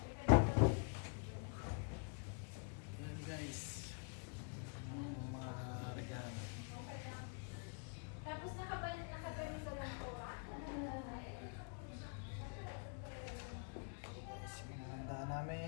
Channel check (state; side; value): quieter; right; 39.7 dB